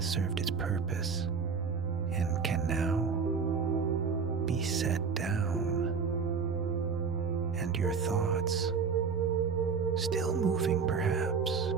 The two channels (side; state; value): left; quieter; 5.6 dB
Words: served its purpose and can now be set down, and your thoughts still moving perhaps,